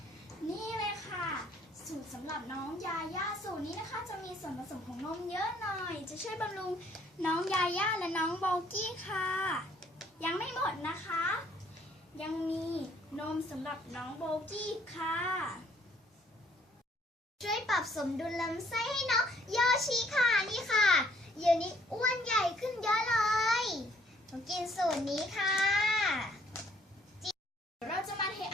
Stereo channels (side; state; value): both; normal; correlation 0.63